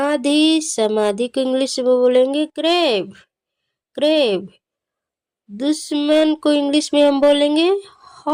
समाधि को इंग्लिश में बोलेंगे ग्रेव, ग्रेव। दुश्मन को इंग्लिश में हम बोलेंगे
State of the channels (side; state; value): both; identical; correlation 1.00